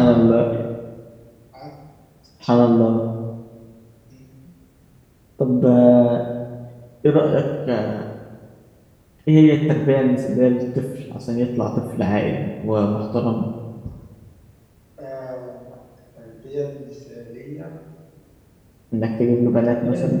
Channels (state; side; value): identical; both; correlation 1.00